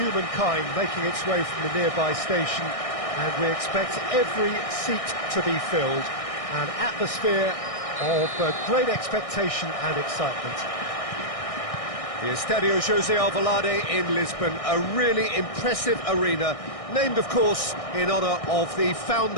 making its way from the nearby station, and we expect every seat to be filled. An atmosphere of great expectation and excitement. The Estadio José Alvalade in Lisbon, a really impressive arena, named, of course, in honour of the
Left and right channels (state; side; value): late; right; 1.6 ms